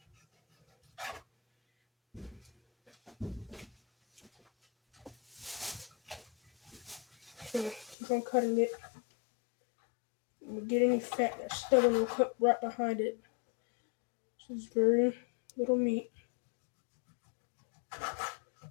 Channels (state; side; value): drops out; right; at 8.0 s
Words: So keep on cutting it. And we get any fat that's stubborn, we'll cut right behind it. This is very little meat.